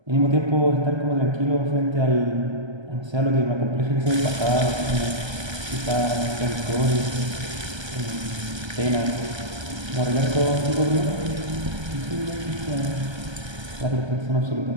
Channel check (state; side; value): late; left; 1.3 ms